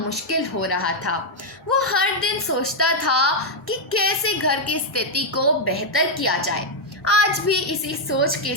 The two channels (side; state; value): both; normal; correlation -0.01